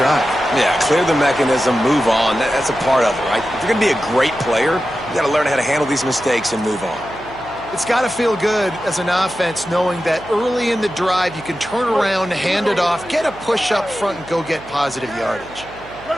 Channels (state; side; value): noise; right; hum, 20 dB below the sound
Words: Yeah, clear the mechanism, move on. That's a part of it, right? If you're going to be a great player, you got to learn how to handle these mistakes and move on. It's got to feel good as an offense knowing that early in the drive you can turn around, hand it off, get a push up front, and go get positive yardage.